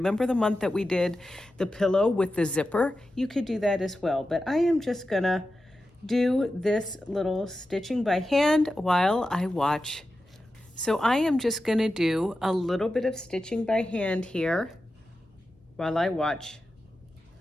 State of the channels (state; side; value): normal; both; correlation 0.92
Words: the month that we did the pillow with the zipper? You could do that as well. But I am just gonna do this little stitching by hand while I watch. So I am just gonna do a little bit of stitching by hand here while I watch